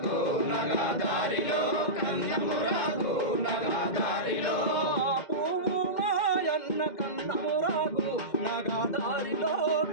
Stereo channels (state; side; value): late; right; 2.1 ms